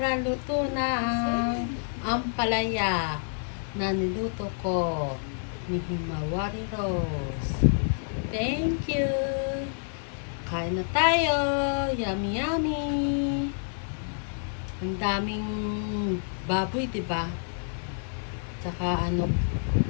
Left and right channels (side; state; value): right; silent; digital silence